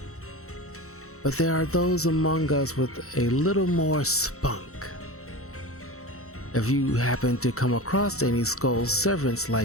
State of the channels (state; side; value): late; right; 0.64 ms